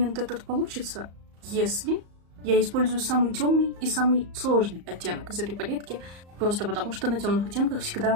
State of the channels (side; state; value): left; late; 34 ms